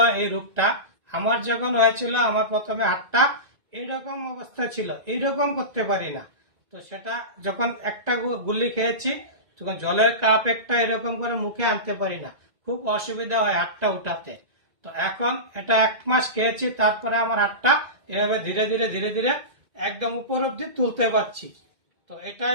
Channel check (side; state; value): left; late; 1.9 ms